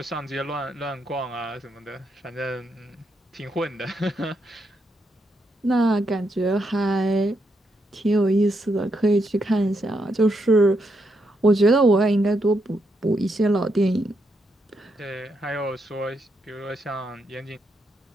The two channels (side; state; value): both; normal; correlation 0.80